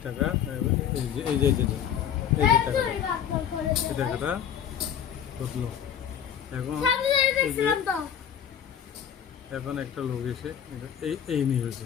টাকা, এই যে এই যে এই যে এই যে টাকাটা, এই টাকাটা ঢুকলো। এখন এই যে এখন একটা লোক এসে এই নিয়ে হয়েছে,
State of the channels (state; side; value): quieter; right; 9.0 dB